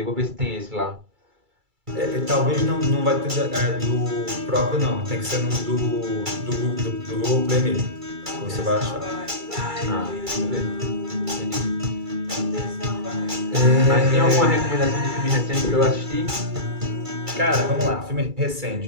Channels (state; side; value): late; left; 2.3 ms